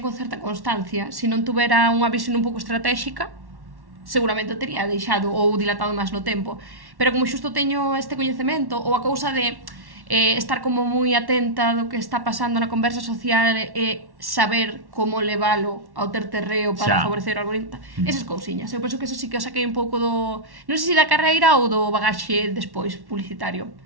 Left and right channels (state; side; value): late; left; 1.1 ms